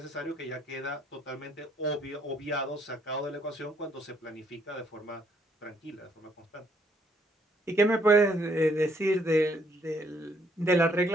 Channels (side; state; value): both; normal; correlation 0.69